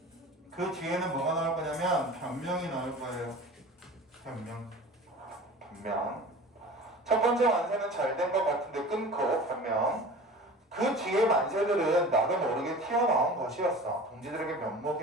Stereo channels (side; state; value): both; normal; correlation 0.39